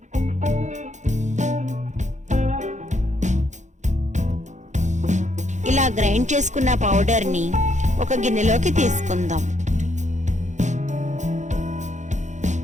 ఇలా గ్రైండ్ చేసుకున్న పౌడర్ని ఒక గిన్నెలోకి తీసుకుందాం.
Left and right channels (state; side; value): late; left; 0.35 ms